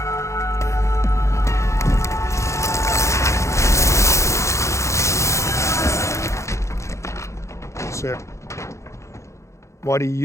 Sarah, why do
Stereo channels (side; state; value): right; late; 0.14 ms